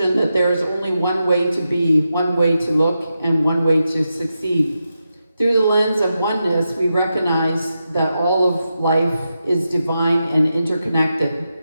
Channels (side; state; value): both; inverted; correlation -0.88